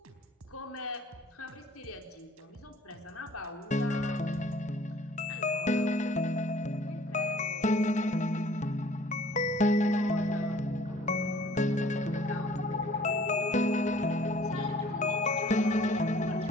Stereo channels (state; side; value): normal; both; correlation 0.54